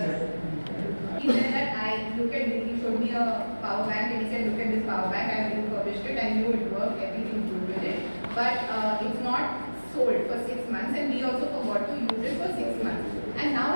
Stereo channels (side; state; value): both; inverted; correlation -1.00